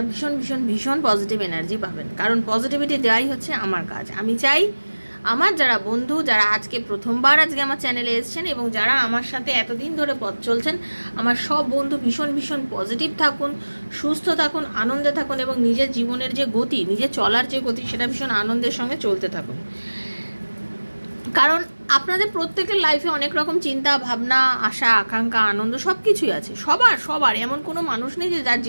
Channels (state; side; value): inverted; both; correlation -1.00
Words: ভীষণ ভীষণ ভীষণ পজিটিভ এনার্জি পাবেন, কারণ পজিটিভিটি দেওয়াই হচ্ছে আমার কাজ। আমি চাই আমার যারা বন্ধু, যারা আজকে প্রথমবার আজকে আমার চ্যানেলে এসেছেন এবং যারা আমার সাথে এতদিন ধরে পথ চলছেন, আমার সব বন্ধু ভীষণ ভীষণ পজিটিভ থাকুন, সুস্থ থাকুন, আনন্দে থাকুন এবং নিজের জীবনের যে গতি, নিজের চলার যে গতি, সেটা ভীষণ আনন্দের সঙ্গে চলতে থাকুন। কারণ আপনাদের প্রত্যেকের লাইফে অনেক রকম চিন্তা ভাবনা, আশা আকাঙ্ক্ষা, আনন্দ সব কিছুই আছে। সবার এমন কোনো মানুষ নেই যে যার